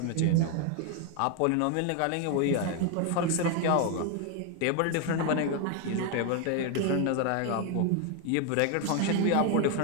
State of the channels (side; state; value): both; different; correlation 0.01